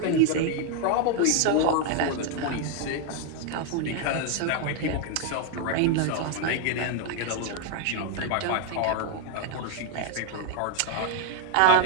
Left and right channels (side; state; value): both; different; correlation 0.00